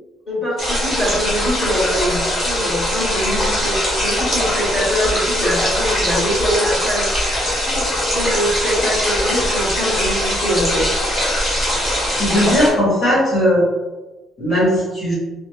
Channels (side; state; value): both; normal; correlation 0.70